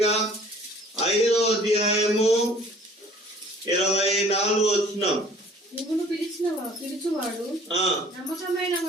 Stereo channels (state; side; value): normal; both; correlation 0.53